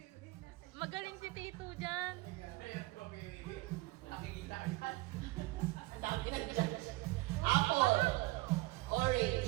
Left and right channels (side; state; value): left; quieter; 21.5 dB